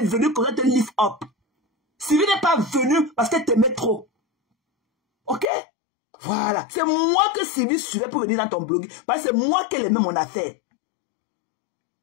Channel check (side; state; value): right; drops out; at 5.5 s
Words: pour te lift up. Sylvie n'est pas venue parce qu'elle t'aimait trop. Ok? Voilà. C'est moi que Sylvie suivait pour venir dans ton blog. Parce que c'est moi qui aimais mon affaire.